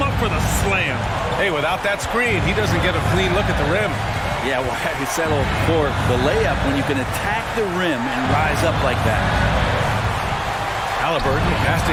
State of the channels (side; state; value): both; identical; correlation 1.00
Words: up for the slam. Hey, without that screen, he doesn't get a clean look at the rim. Yeah, well, I settle for the layup when you can attack the rim and rise up like that. Halliburton pass